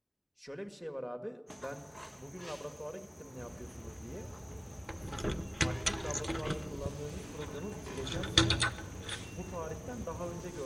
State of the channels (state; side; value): identical; both; correlation 1.00